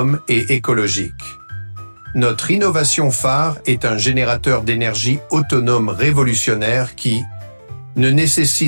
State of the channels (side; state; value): both; inverted; correlation -1.00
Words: et écologique. Notre innovation phare est un générateur d'énergie autonome révolutionnaire qui ne